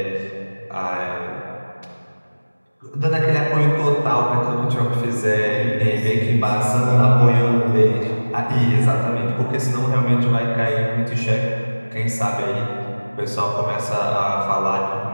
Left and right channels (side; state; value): both; inverted; correlation -1.00